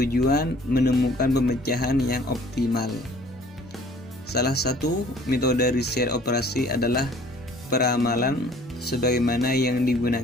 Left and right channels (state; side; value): normal; both; correlation 0.53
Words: menemukan pemecahan yang optimal. Salah satu metode riset operasi adalah peramalan sebagaimana yang